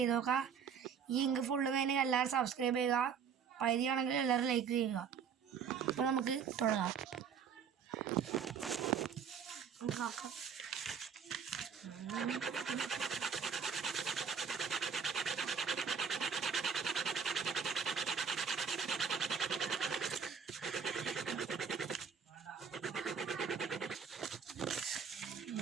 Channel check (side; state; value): left; quieter; 6.8 dB